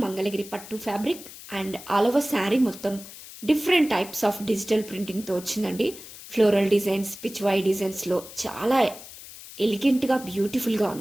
మంగళగిరి పట్టు fabric and all over sari మొత్తం డిఫరెంట్ టైప్స్ ఆఫ్ డిజిటల్ ప్రింటింగ్తో వచ్చిందండి. ఫ్లోరల్ డిజైన్స్, పిచ్వై డిజైన్స్లో చాలా ఎలిగెంట్గా బ్యూటిఫుల్గా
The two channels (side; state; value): left; noise; hiss, 15 dB below the sound